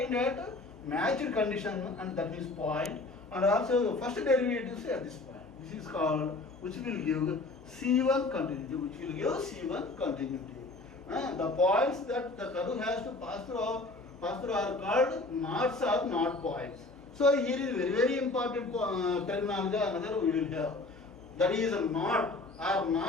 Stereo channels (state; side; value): quieter; right; 3.2 dB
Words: at matched condition, and that means point, and also first derivatives at this point. This is called, which will give C1 continuity, The points that the curve has to pass through are called knots or knot points. So here is very important terminology another we will have. That is a knot or